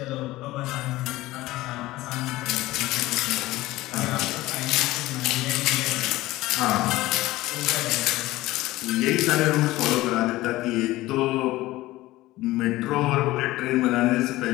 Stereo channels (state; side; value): quieter; right; 17.8 dB